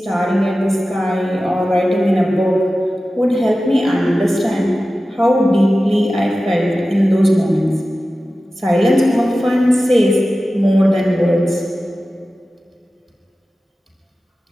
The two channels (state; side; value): normal; both; correlation 0.95